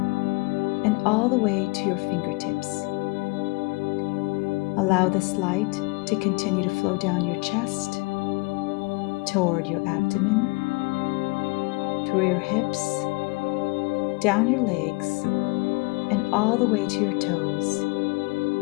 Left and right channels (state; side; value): quieter; right; 27.2 dB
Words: and all the way to your fingertips. Allow this light to continue to flow down your chest, toward your abdomen, through your hips, down your legs, and all the way to your toes,